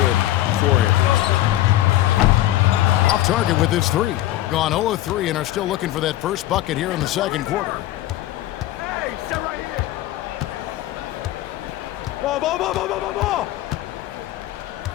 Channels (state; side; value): quieter; right; 14.9 dB